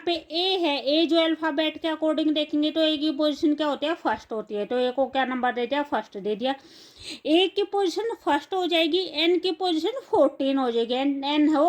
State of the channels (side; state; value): both; identical; correlation 1.00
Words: पे A है, A जो अल्फाबेट के अकॉर्डिंग देखेंगे तो A की पोजीशन क्या होती है, फर्स्ट होती है। तो A को क्या नंबर दे दिया, फर्स्ट दे दिया। A की पोजीशन फर्स्ट हो जाएगी, N की पोजीशन 14 हो जाएगी, N है